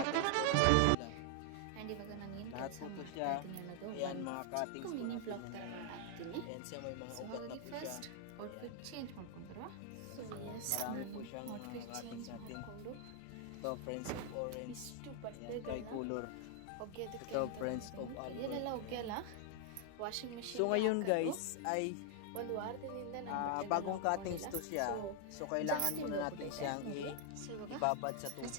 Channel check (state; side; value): different; both; correlation 0.00